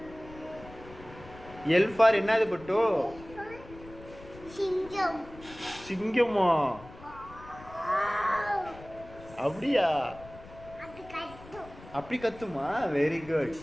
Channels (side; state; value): left; noise; rumble, 18 dB below the sound